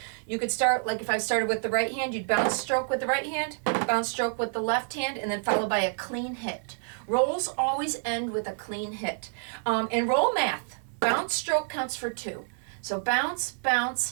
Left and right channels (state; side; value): silent; left; 59 dB below the other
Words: You could start, like if I started with the right hand, you'd bounce stroke with the right hand, bounce stroke with the left hand, and then followed by a clean hit. Rolls always end with a clean hit. In roll math, bounce stroke counts for 2. So bounce, bounce,